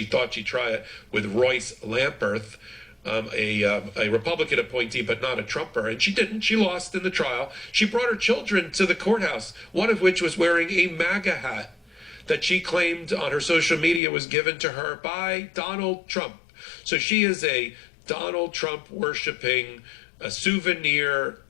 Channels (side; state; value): right; drops out; at 14.0 s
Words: thought she'd try it with Royce Lamperth, a Republican appointee, but not a Trumper. And she didn't. She lost in the trial. She brought her children to the courthouse, one of which was wearing a MAGA hat that she claimed on her social media was given to her by Donald Trump. So she is a Donald Trump worshiping, souvenir